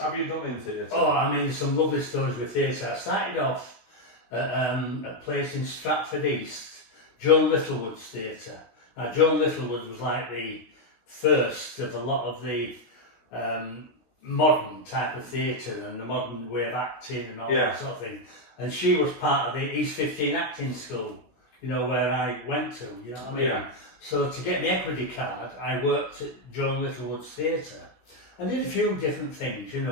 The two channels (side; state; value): right; late; 16 ms